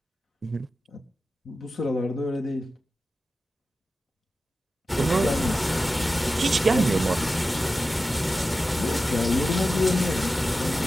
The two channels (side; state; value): both; normal; correlation 0.93